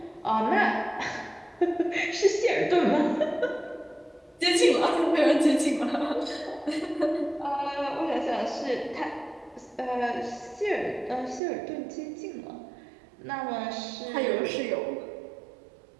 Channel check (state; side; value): drops out; left; at 11.4 s